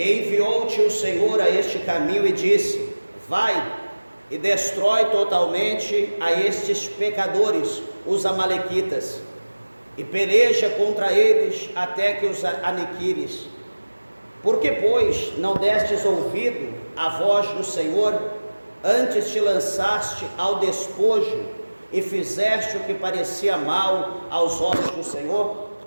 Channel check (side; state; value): both; inverted; correlation -1.00